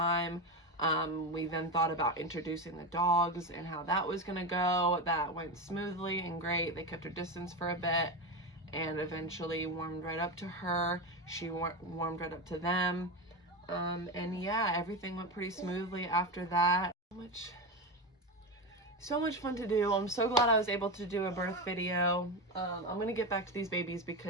We then thought about introducing the dogs and how that was gonna go. That went smoothly and great. They kept her distance for a bit and eventually warmed right up to her. She warmed right up to them. And yeah, everything went pretty smoothly after that. So much fun to do. I'm so glad I was able to do a birth video. I'm gonna get back to these babies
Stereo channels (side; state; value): both; normal; correlation 0.18